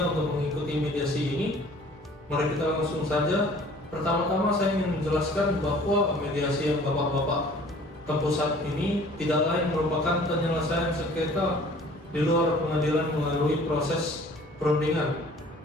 untuk mengikuti mediasi ini, mari kita langsung saja. Pertama-tama saya ingin menjelaskan bahwa mediasi yang Bapak-Bapak tempuh saat ini tidak lain merupakan penyelesaian sengketa di luar pengadilan melalui proses perundingan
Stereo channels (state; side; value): normal; both; correlation 0.51